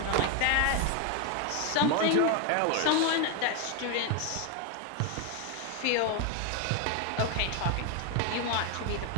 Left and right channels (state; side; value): different; both; correlation 0.01